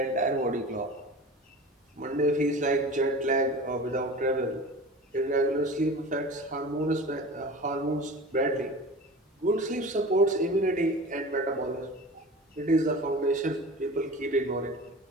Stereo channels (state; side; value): normal; both; correlation 0.36